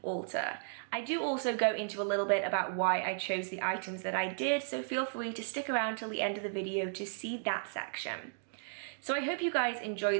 altar. I do also go into a little bit about why I chose the items that I did, so feel free to stick around till the end of the video to see that section. So I hope you guys enjoy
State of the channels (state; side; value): silent; left; digital silence